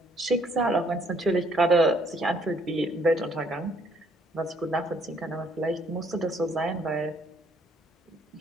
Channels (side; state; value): both; normal; correlation 0.65